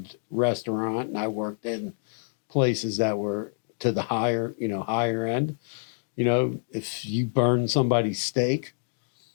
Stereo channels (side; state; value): right; silent; digital silence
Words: restaurant, and I worked in places that were to the higher end, if you burn somebody's steak,